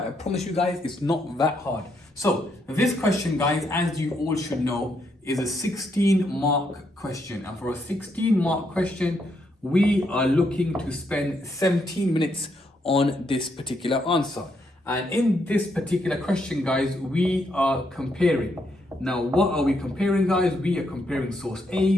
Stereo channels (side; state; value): both; normal; correlation 0.77